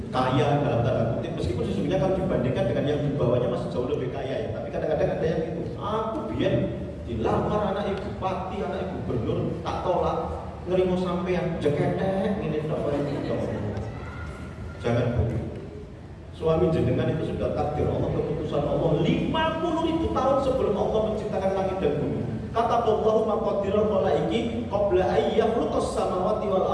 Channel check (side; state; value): both; identical; correlation 1.00